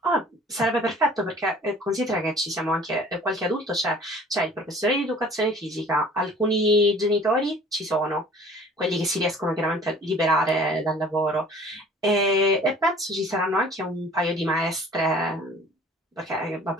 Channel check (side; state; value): both; normal; correlation 0.50